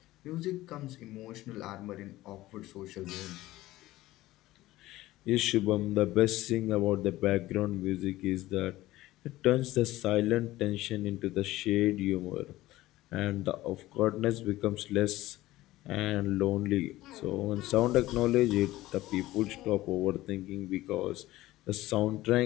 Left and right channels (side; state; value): right; quieter; 16.8 dB